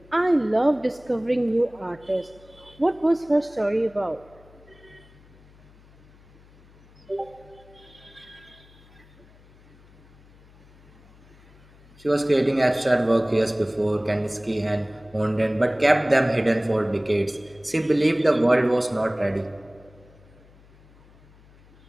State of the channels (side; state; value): left; noise; hum, 26 dB below the sound